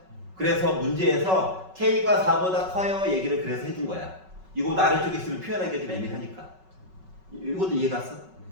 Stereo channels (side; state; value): left; late; 5.3 ms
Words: 그래서 문제에서 K가 4보다 커요 얘기를 그래서 해준 거야. 이거 아래쪽에 있으면 표현하기가 좀 애매하니까. 이것도 이해 갔어?